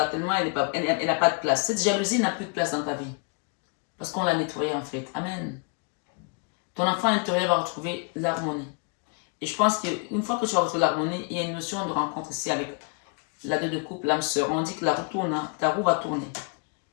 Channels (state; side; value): quieter; right; 37.2 dB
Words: Tellement elle n'a pas de place. Cette jalousie n'a plus de place dans ta vie. Parce qu'on l'a nettoyée en fait. Amen. Ton enfant intérieur va retrouver l'harmonie. Et je pense qu'une fois que tu vas retrouver l'harmonie, il y a une notion de rencontre ici avec la deux de couple, l'âme sœur. On dit que la roue tourne, hein, ta roue va tourner.